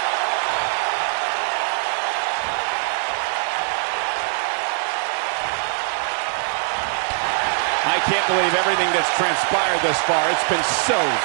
I can't believe everything that's transpired thus far. It's been so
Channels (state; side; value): silent; left; 59 dB below the other